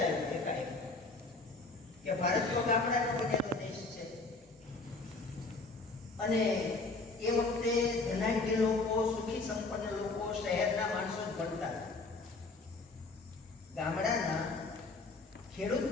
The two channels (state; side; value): quieter; right; 3.5 dB